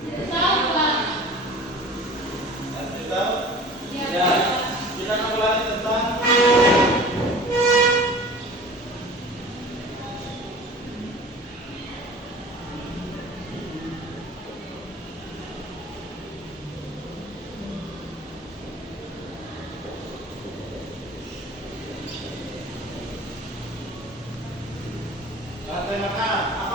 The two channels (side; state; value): both; normal; correlation 0.41